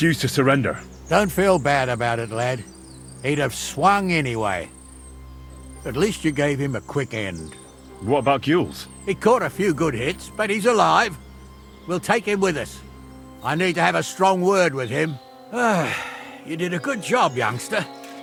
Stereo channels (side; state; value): both; identical; correlation 1.00